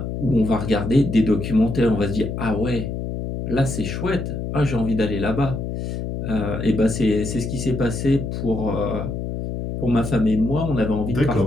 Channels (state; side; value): noise; left; hum, 4 dB below the sound